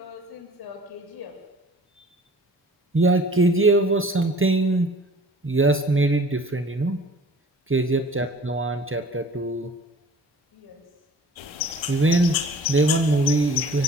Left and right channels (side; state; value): both; normal; correlation 0.48